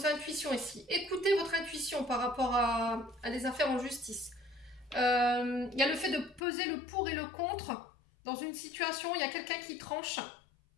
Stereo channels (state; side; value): drops out; right; at 6.4 s